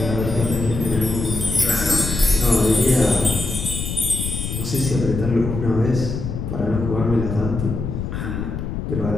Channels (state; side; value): noise; left; rumble, 4 dB below the sound